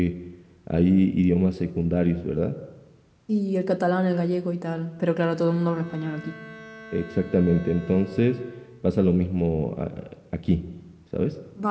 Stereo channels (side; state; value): both; identical; correlation 1.00